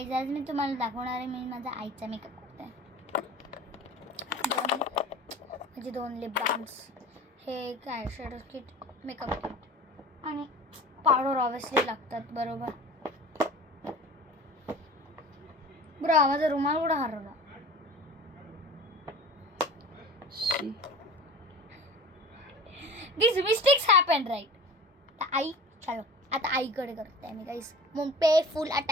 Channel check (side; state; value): both; normal; correlation 0.39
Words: आज मी तुम्हाला दाखवणार आहे मी माझा आईचा मेकअप करते. माझे 2 लिप बाम्स, हे एक eye shadow kit, makeup kit आणि पावडर ऑब्विसली लागतात. बरोबर ब्रो, माझा रुमाल कुठं हरवला? These mistakes happen, right? आई चलो आता आईकडे करते मी guys. Pay full